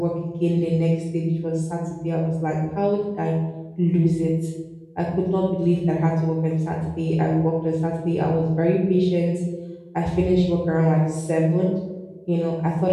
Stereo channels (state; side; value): identical; both; correlation 1.00